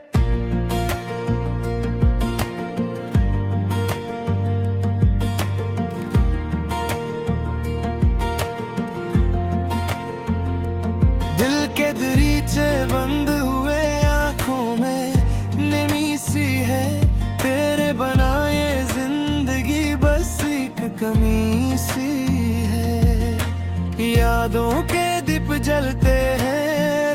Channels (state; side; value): identical; both; correlation 1.00